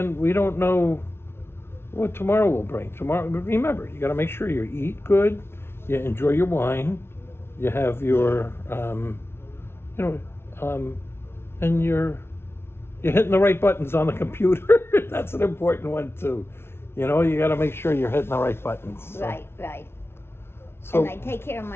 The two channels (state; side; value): late; right; 0.12 ms